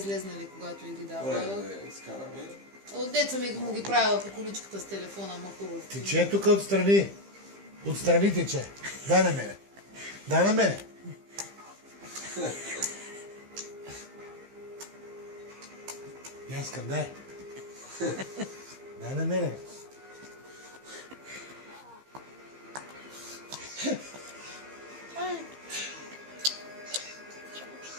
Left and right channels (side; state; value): left; late; 15 ms